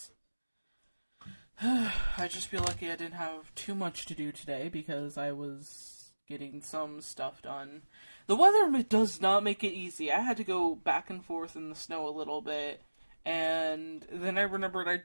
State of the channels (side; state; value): both; inverted; correlation -1.00